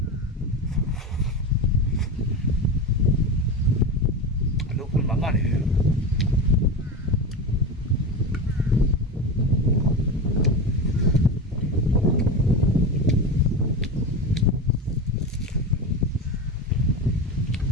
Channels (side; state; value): both; normal; correlation 0.22